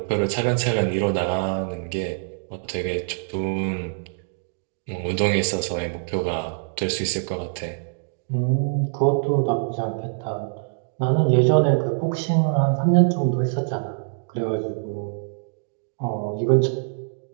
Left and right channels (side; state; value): left; silent; digital silence